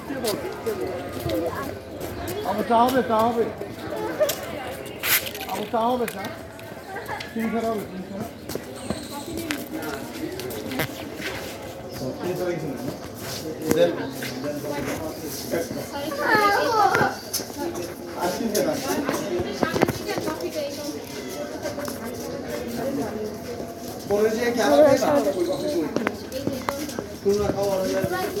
আমার চা হবে চা হবে আমার চা হবে চা 300 হবে 300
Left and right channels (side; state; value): both; identical; correlation 1.00